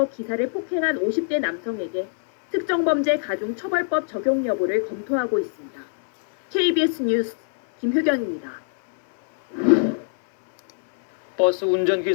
기사를 폭행한 50대 남성에게 특정범죄 가중처벌법 적용 여부를 검토하고 있습니다. KBS 뉴스 김효경입니다. 버스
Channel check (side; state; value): right; silent; 64 dB below the other